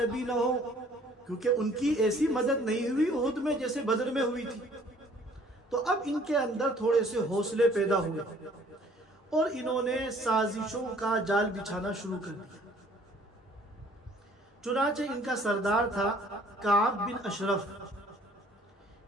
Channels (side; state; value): both; normal; correlation 0.57